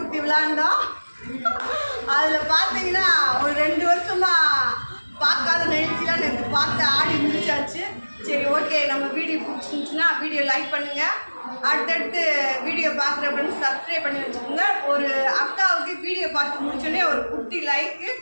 ஊற்றி விளாண்டோம். அதில் பார்த்தீங்கன்னா ஒரு 2 வருஷமாக பார்க்காத நிகழ்ச்சிலாம் நேற்று பார்த்து ஆடி முடிச்சாச்சு. சரி, ஓகே, நம்ம வீடியோ பிடிச்சிருந்துச்சுன்னா வீடியோ லைக் பண்ணுங்கள். அடுத்தடுத்து வீடியோ பார்க்குற ஃப்ரெண்ட்ஸ் சப்ஸ்கிரைப் பண்ணி வச்சுக்கோங்க. ஒரு அக்காவுக்கு வீடியோ பார்த்து முடிச்சோடனே ஒரு குட்டி லைக்கு,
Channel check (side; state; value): both; inverted; correlation -1.00